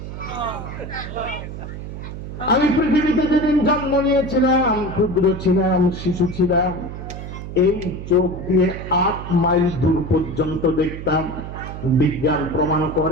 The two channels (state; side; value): noise; right; hum, 9 dB below the sound